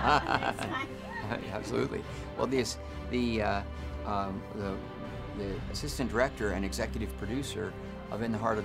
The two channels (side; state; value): both; identical; correlation 1.00